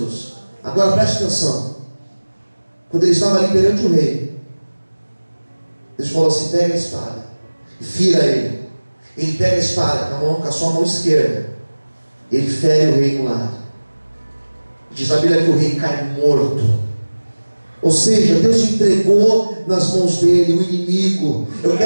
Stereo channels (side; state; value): both; inverted; correlation -1.00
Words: Agora preste atenção. Quando ele estava ali perante o rei, Deus falou assim: pega a espada e fira ele. Ele pega a espada com a sua mão esquerda. Ele fere o rei no lado. Diz a Bíblia que o rei cai morto. Ou seja, Deus entregou nas mãos dele o inimigo. Eu